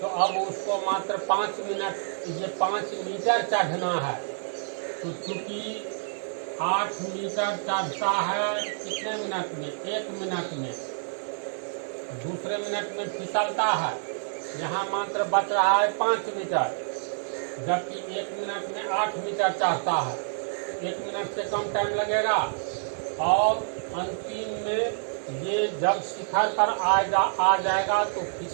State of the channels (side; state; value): left; silent; digital silence